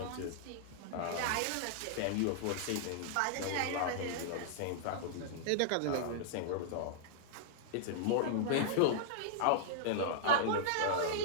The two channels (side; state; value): both; different; correlation -0.02